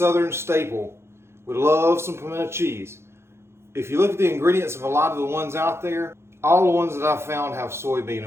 staple. We love some pimento cheese. If you look at the ingredients of a lot of the ones out there, all the ones that I've found have soybean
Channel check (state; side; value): late; left; 0.12 ms